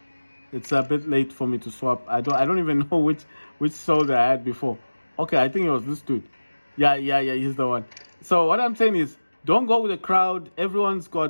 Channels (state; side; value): inverted; both; correlation -1.00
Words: It's a bit late for me to swap. I don't even know which soldier I had before. Okay, I think it was this dude. Yeah, he's the one. So what I'm saying is, don't go with the crowd. Everyone's